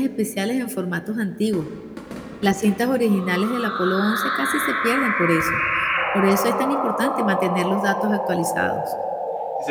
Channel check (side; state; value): both; identical; correlation 1.00